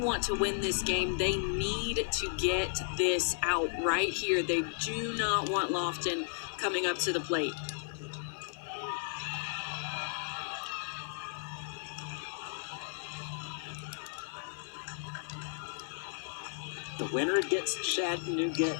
to win this game, they need to get this out right here. They do not want Lofton coming up to the plate. The winner gets Chattanooga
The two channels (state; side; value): silent; right; digital silence